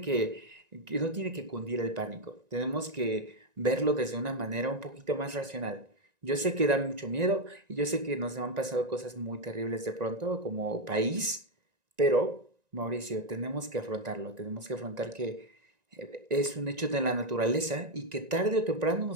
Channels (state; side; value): late; left; 1.9 ms